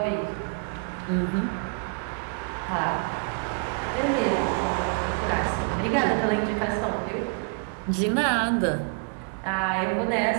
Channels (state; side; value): quieter; left; 39.6 dB